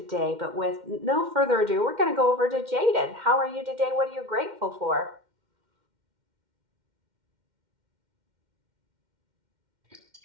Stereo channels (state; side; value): late; left; 2.1 ms